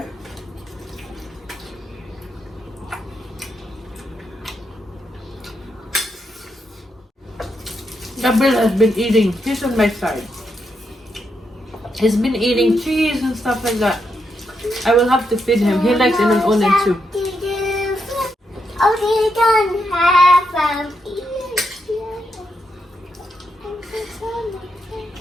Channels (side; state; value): both; normal; correlation 0.82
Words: Gabriel has been eating. He's on my side. He's been eating cheese and stuff like that. I will have to feed him. He likes inununan too. Oh, they don't have